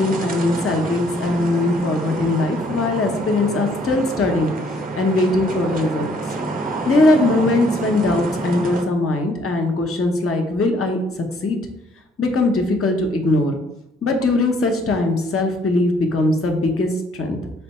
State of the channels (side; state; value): both; normal; correlation 0.64